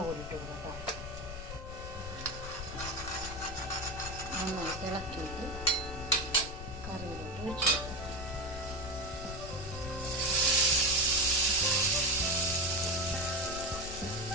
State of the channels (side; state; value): left; noise; rumble, 9 dB below the sound